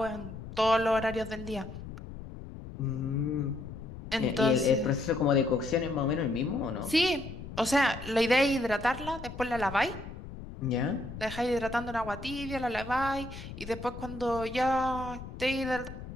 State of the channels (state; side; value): noise; left; rumble, 12 dB below the sound